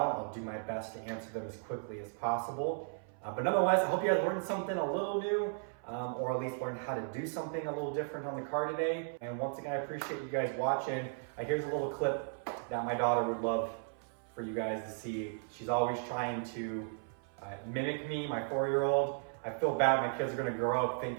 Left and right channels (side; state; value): left; silent; 54 dB below the other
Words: I'll do my best to answer them as quickly as possible. But nonetheless, I hope you guys learned something a little new, or at least learned how to do something a little different on the car today. And once again, I appreciate you guys watching. Here's a little clip that my daughter would love for you guys to see. She's always trying to mimic me, my 4-year-old. I feel bad my kids are gonna grow up